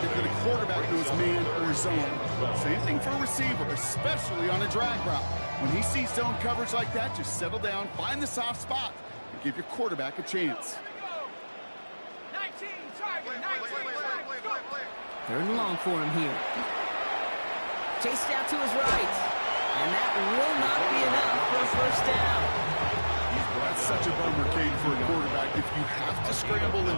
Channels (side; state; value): both; inverted; correlation -1.00